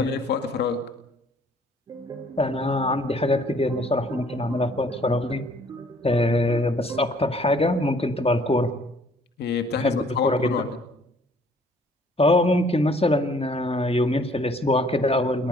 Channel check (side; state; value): both; normal; correlation 0.59